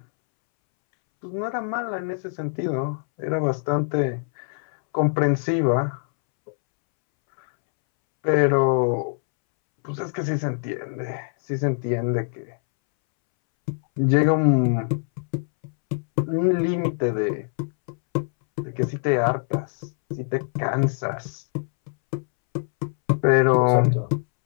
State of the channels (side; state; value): right; silent; 63 dB below the other